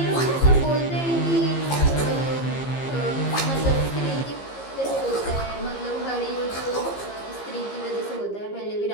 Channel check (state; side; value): late; right; 15 ms